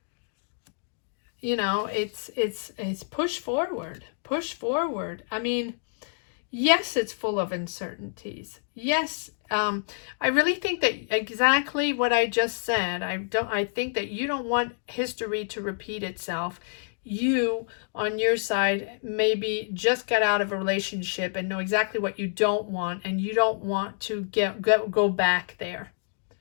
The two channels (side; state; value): right; silent; digital silence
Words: You know, it's push forward. Push forward. I mean, yes, it's full of uncertainties. Yes, I really think that exactly what I just said. I think that you don't want history to repeat itself. You, on your side, maybe just got out of a relationship and know exactly what you don't want, and you don't want to go back there,